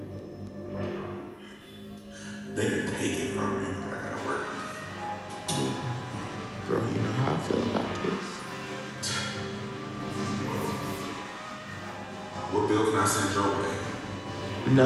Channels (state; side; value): identical; both; correlation 1.00